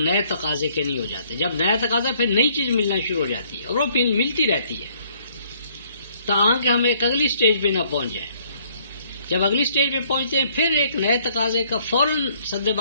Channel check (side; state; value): both; inverted; correlation -0.64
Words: تقاضے کے نہیں ہو جاتے۔ جب نیا تقاضا پھر نئی چیز ملنا شروع ہو جاتی ہے اور وہ پھر ملتی رہتی ہے تاکہ ہم ایک اگلی سٹیج پہ نہ پہنچ جائیں۔ جب اگلی سٹیج پہ پہنچتے ہیں پھر ایک نئے تقاضے کا فوراً سد